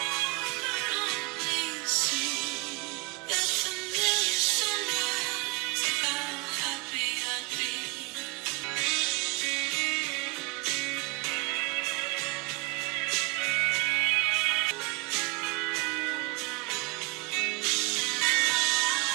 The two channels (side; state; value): left; quieter; 26.0 dB